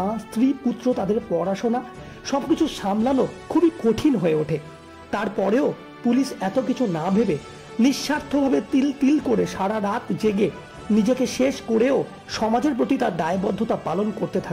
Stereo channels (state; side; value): identical; both; correlation 1.00